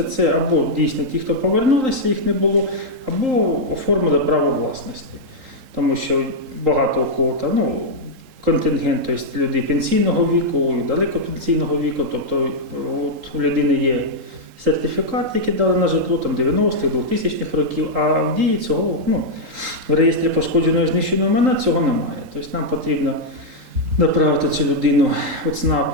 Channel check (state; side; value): late; left; 3.8 ms